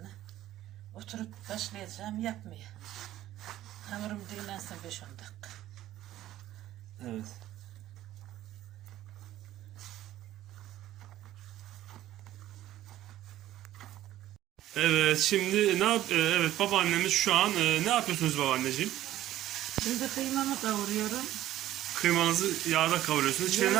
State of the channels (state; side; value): quieter; left; 13.8 dB